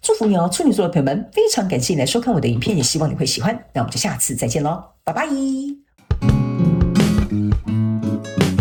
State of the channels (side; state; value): both; identical; correlation 1.00